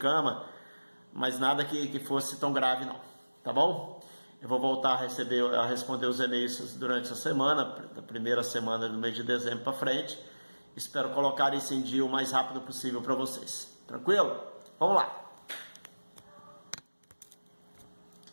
mas nada que fosse tão grave não. Tá bom? Eu vou voltar a responder os e-mails durante a semana, da primeira semana do mês de dezembro para frente. Espero colocar isso em dia o mais rápido possível para vocês. Tranquilo? Vamos lá!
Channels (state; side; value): inverted; both; correlation -1.00